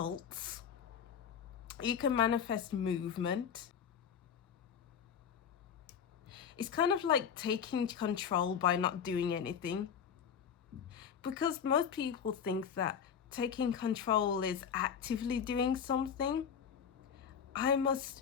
You can manifest movement. It's kind of like taking control by not doing anything. Because most people think that taking control is actively doing something. I must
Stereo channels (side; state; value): right; quieter; 7.6 dB